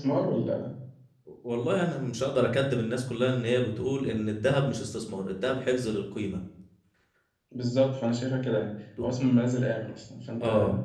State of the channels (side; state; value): both; identical; correlation 1.00